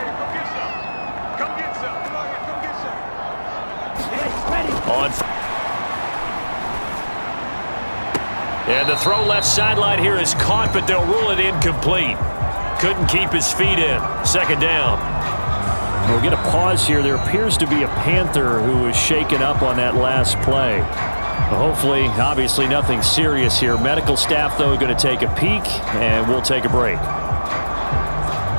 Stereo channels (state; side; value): inverted; both; correlation -1.00